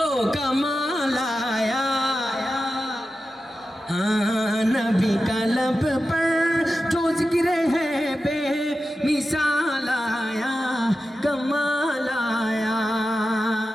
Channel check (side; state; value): both; normal; correlation 0.92